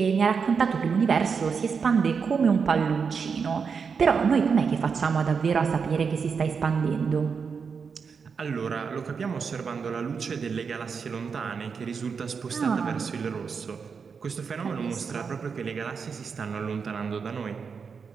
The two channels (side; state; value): left; quieter; 5.8 dB